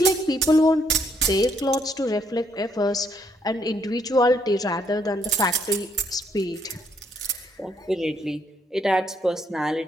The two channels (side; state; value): both; normal; correlation 0.71